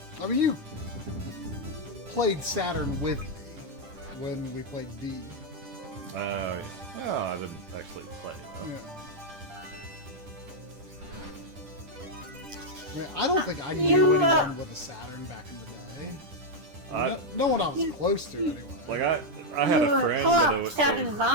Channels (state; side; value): late; left; 10 ms